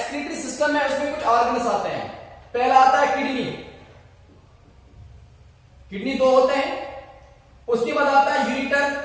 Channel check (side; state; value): both; identical; correlation 1.00